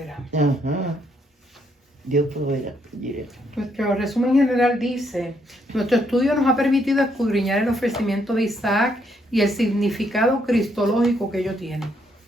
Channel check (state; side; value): normal; both; correlation 0.73